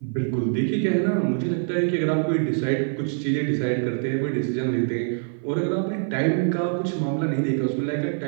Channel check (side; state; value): left; silent; 56 dB below the other